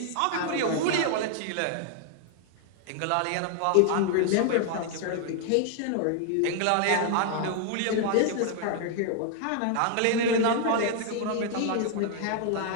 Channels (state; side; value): different; both; correlation 0.00